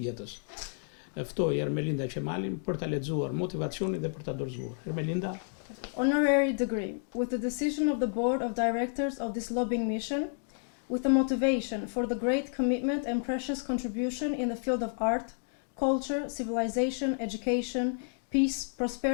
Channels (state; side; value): silent; right; digital silence